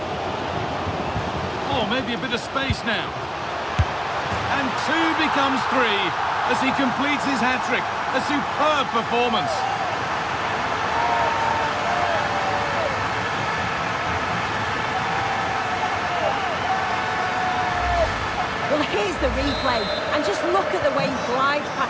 Oh, maybe a bit of space now. And 2 becomes 3. As he completes his hat-trick. A superb performance. Well, here's the replay, and just look at the way he glides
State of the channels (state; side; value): identical; both; correlation 1.00